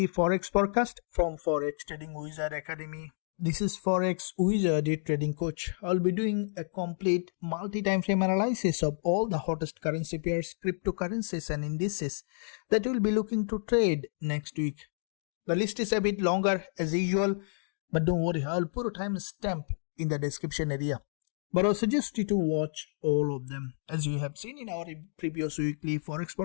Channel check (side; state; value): right; silent; digital silence